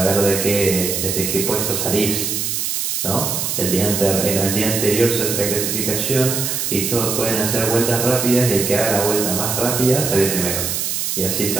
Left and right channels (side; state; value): right; noise; hiss, 1 dB below the sound